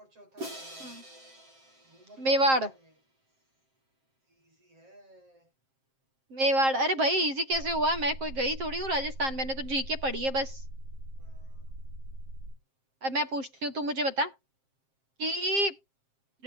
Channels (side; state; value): left; late; 7.5 ms